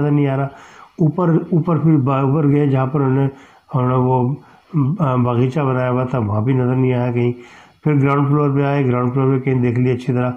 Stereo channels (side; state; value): both; identical; correlation 1.00